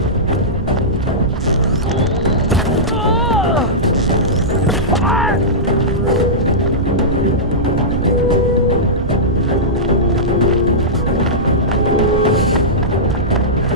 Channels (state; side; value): noise; right; rumble, 5 dB below the sound